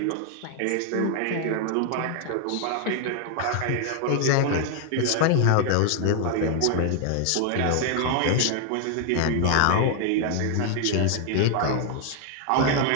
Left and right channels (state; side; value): different; both; correlation 0.00